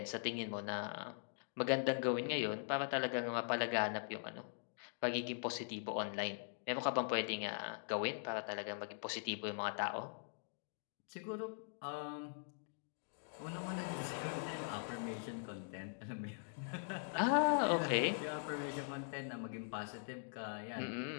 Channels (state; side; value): silent; right; digital silence